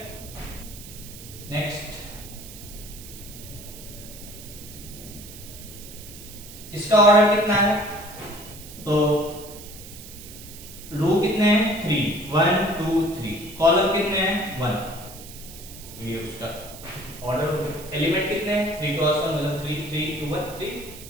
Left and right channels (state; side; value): noise; right; hiss, 15 dB below the sound